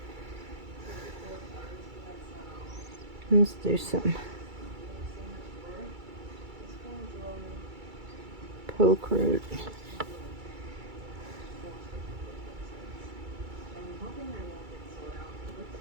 Let's do some poke root.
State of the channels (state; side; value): late; left; 2.3 ms